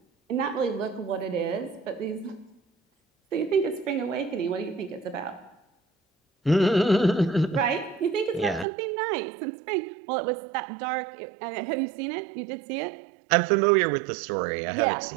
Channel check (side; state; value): left; drops out; at 8.7 s